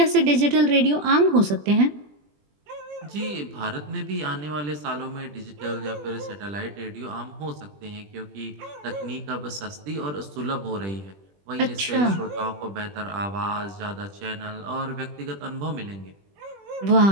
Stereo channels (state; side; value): late; left; 20 ms